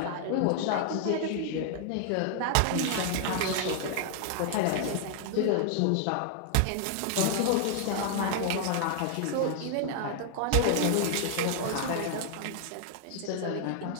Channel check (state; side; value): different; both; correlation 0.00